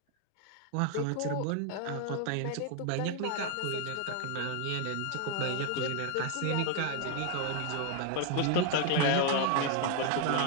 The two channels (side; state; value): both; different; correlation 0.00